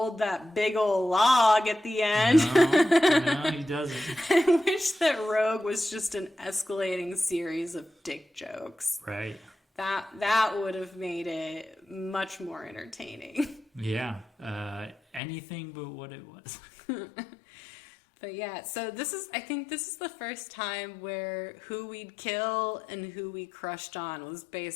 that big old log at the end. No, he doesn't. I wish that Rogue was just an escalating series of dick jokes. Right. That would have made it much more entertaining. Yeah. Anything but what it was. But yeah, so I think this is the first time where who we'd kill and who we crushed on was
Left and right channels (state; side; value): drops out; right; at 15.2 s